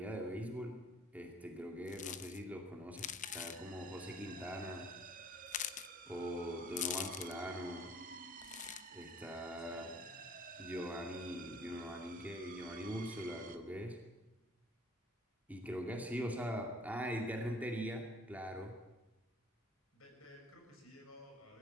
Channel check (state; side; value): normal; both; correlation 0.54